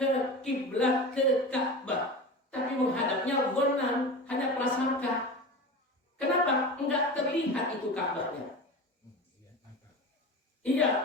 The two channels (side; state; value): both; normal; correlation 0.30